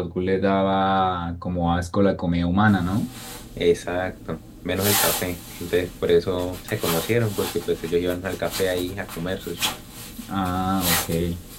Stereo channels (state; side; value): identical; both; correlation 1.00